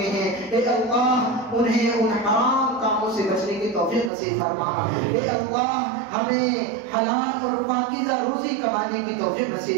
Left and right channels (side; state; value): left; drops out; at 4.1 s